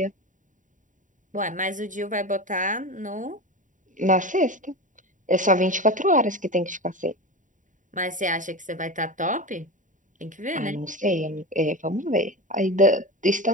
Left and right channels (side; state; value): left; late; 0.37 ms